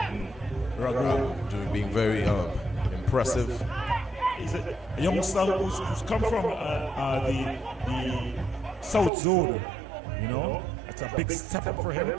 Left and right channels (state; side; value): drops out; left; at 9.1 s